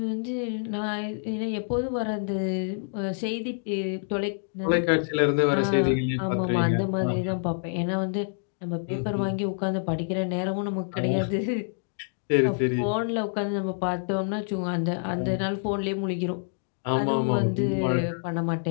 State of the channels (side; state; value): right; silent; digital silence